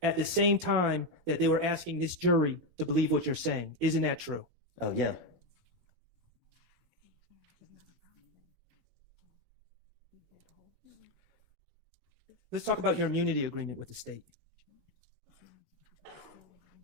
the same time that they were asking this jury to believe what you're saying. Isn't that true? Oh, yeah. Let's talk about your immunity agreement with the state.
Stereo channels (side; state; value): left; late; 18 ms